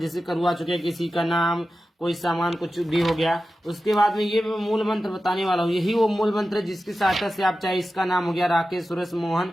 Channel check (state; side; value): normal; both; correlation 0.93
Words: करवा चुके हैं। किसी का नाम, कोई सामान, कुछ भी हो गया, उसके बाद में ये मैं मूल मंत्र बताने वाला हूँ। यही वो मूल मंत्र है जिसकी सहायता से आप, चाहे इसका नाम हो गया राकेश, सुरेश, मोहन,